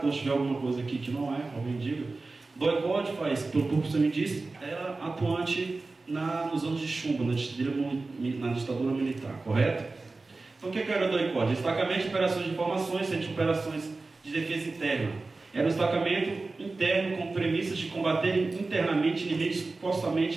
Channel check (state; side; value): quieter; left; 3.5 dB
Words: se tiver alguma coisa aqui que não é, alguém diga. DOI-CODE faz, pelo que você me disse, era atuante nos anos de chumbo, na ditadura militar, correto? Então o que era o DOI-CODE? Destacamento de operações de informações, centro de operações de defesa interna. Era um destacamento interno com premissas de combater internamente inimigos que supostamente